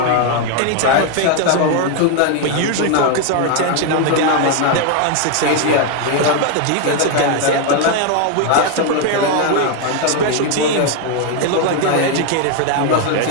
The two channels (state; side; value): different; both; correlation 0.01